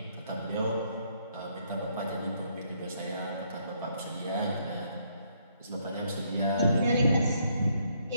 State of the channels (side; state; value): both; inverted; correlation -0.71